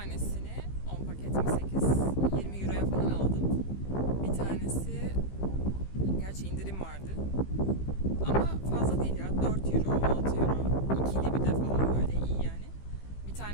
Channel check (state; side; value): late; right; 15 ms